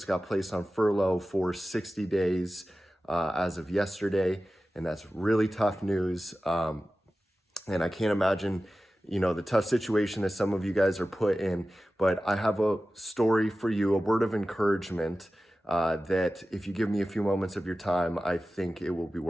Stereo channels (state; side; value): normal; both; correlation 0.95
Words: got placed on furlough for 60 days as of yesterday. And that's really tough news. And I can't imagine, the tough situation that some of you guys are put in. But I have a story for you, a word of encouragement that if you give me a few moments of your time, I think it will be